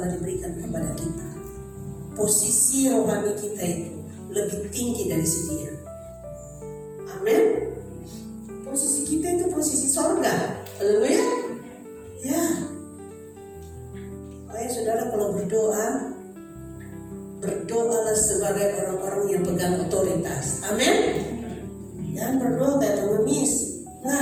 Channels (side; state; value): both; identical; correlation 1.00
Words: diberikan kepada kita. Posisi rohani kita itu lebih tinggi dari si dia. Amin. Posisi kita itu posisi sorga. Haleluya. Ya. Baik saudara, kalau berdoa, berdoalah sebagai orang-orang yang pegang otoritas. Amin. Jangan berdoa kayak pengemis.